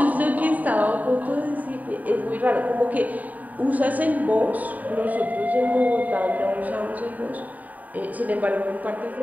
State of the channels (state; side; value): late; left; 0.076 ms